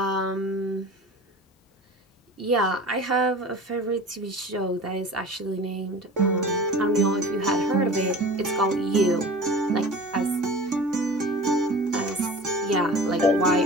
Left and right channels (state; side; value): normal; both; correlation 0.38